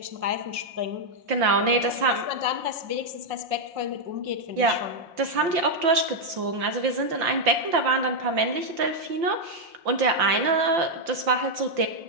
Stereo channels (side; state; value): left; late; 5.9 ms